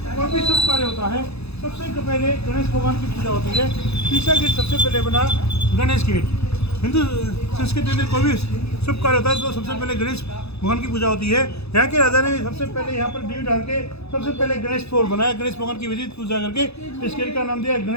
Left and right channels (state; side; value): late; right; 0.79 ms